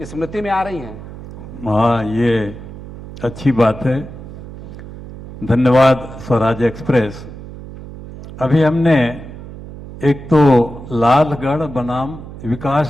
स्मृति में आ रही हैं? हाँ, ये अच्छी बात है। धन्यवाद स्वराज एक्सप्रेस। अभी हमने एक तो लालगढ़ बनाम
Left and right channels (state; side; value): noise; right; hum, 14 dB below the sound